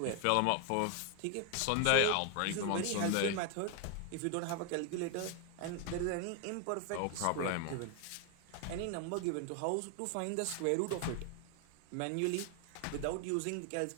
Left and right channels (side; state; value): both; different; correlation 0.00